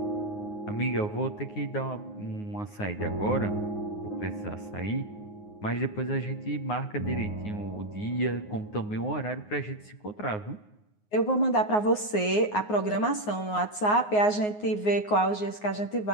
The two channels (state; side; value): late; right; 9.5 ms